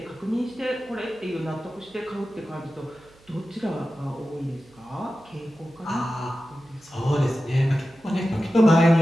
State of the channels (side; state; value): right; noise; hum, 28 dB below the sound